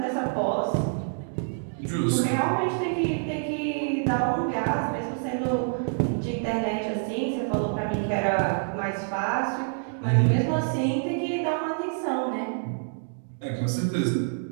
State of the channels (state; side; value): silent; left; digital silence